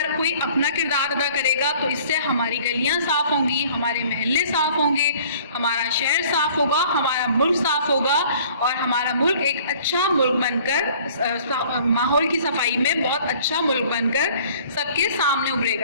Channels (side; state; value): both; inverted; correlation -0.53